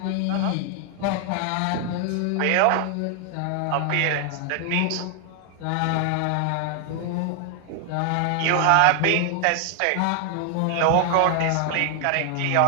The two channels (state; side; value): different; both; correlation 0.00